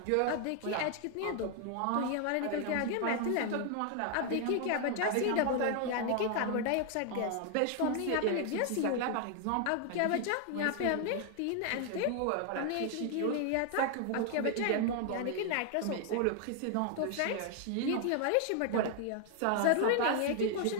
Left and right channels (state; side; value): different; both; correlation 0.00